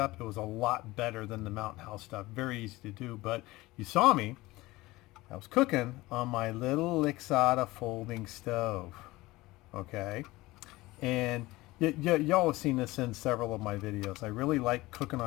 it was a lot better than the Mountain House stuff. Very easy to do. But you saw me, I was cooking on my little Lixada folding stove. Okay, and y'all have seen this in several of my videos. I really like cooking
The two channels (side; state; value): right; quieter; 19.7 dB